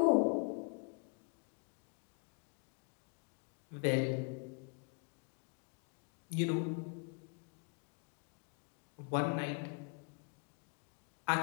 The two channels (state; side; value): quieter; right; 36.9 dB